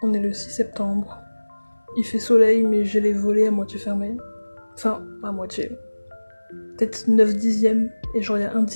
On est le 6 septembre. Il fait soleil, mais j'ai les volets à moitié fermés. Enfin, à moitié. Peut-être 9 dixièmes. Et genre, il y a 1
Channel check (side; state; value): both; inverted; correlation -1.00